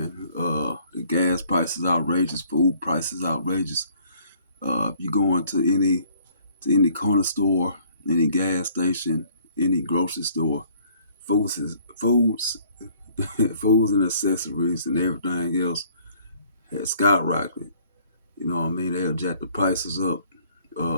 The gas prices outrageous, food prices outrageous. If you go into any corner store, any gas station, any grocery store, foods, foods and accessories and everything else has skyrocketed. You know what I mean? They'll jack the prices up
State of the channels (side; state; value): both; inverted; correlation -0.60